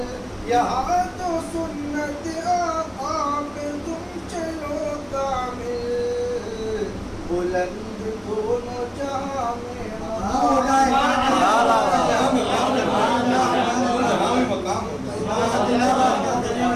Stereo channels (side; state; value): both; identical; correlation 1.00